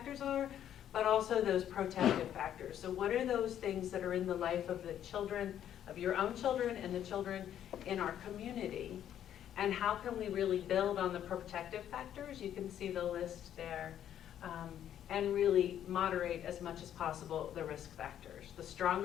are, but also those protective factors. So what are those things that are in the life of the children, of your own children and the children in our community, and how can we really build on the protective factors? You can see the list there. And really moderate as much as possible the risk factors. The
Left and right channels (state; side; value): quieter; right; 10.4 dB